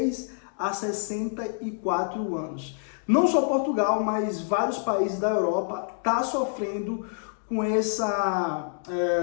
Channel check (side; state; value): right; silent; digital silence